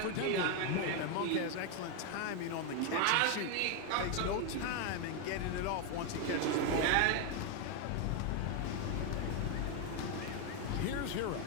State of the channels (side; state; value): both; different; correlation 0.01